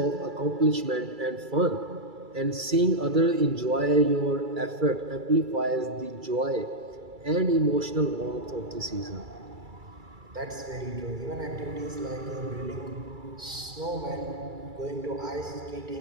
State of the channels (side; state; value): left; late; 2.3 ms